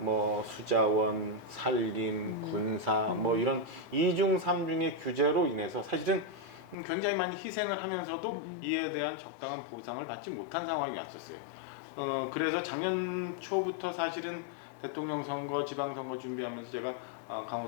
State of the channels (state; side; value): drops out; right; at 6.8 s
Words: 수자원, 산림, 군사 뭐 이런 이중 삼중의 규제로 인해서 사실은 굉장히 많이 희생을 하면서도 이에 대한 적당한 보상을 받지 못한 상황이 왔었어요. 그래서 작년 초부터 사실은 대통령 선거, 지방선거 준비하면서 제가